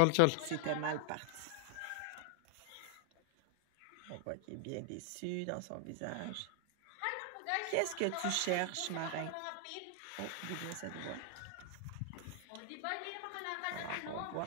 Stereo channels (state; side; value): different; both; correlation 0.00